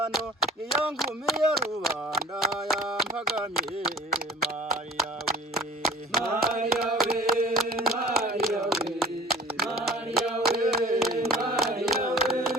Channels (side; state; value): both; normal; correlation 0.45